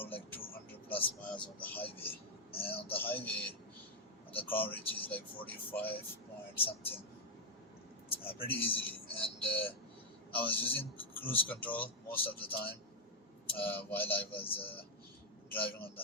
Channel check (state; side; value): normal; both; correlation -0.01